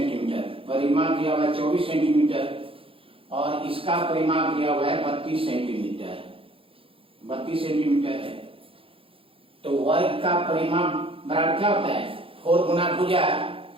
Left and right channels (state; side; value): late; left; 0.27 ms